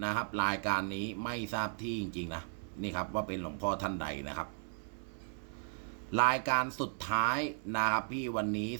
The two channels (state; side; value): silent; left; 54 dB below the other